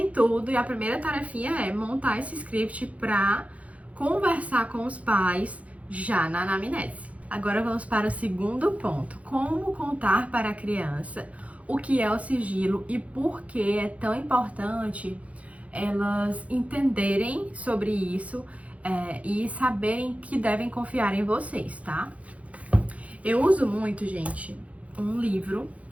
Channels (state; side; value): late; left; 0.066 ms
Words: tudo e a primeira tarefinha é montar esse script para conversar com os pais já na anamnese. Agora vamos para o segundo ponto, como contar para a criança o que é o sigilo e por que é tão importante elas entenderem sobre isso e saberem que devem confiar em vocês, tá? Eu uso muito, gente, um livro,